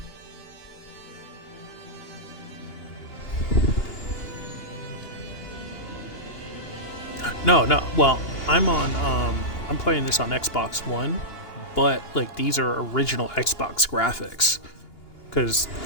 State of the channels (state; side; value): late; right; 2.8 ms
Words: No. Well, I'm playing this on Xbox One, but like these are original Xbox graphics because